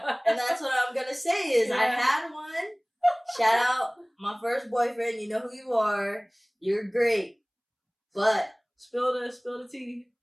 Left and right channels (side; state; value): both; identical; correlation 1.00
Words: And that's what I'm gonna say is I had one. Shout out my first boyfriend. You know who you are. You're great. But spill the tea.